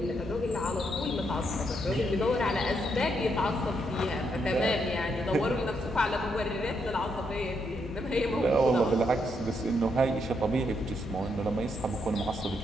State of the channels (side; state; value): both; normal; correlation 0.78